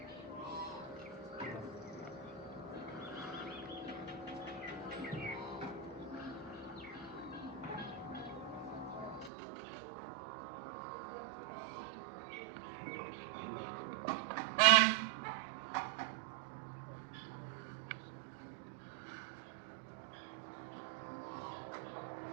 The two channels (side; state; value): left; drops out; at 9.3 s